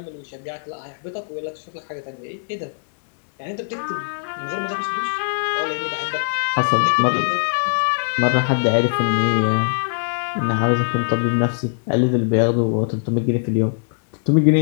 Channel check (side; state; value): right; silent; digital silence